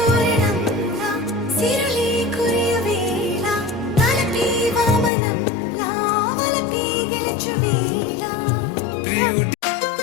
సిరులే కురియవేళ తలపి వామనంలా వలపి గెలుచువేళ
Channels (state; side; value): drops out; right; at 5.1 s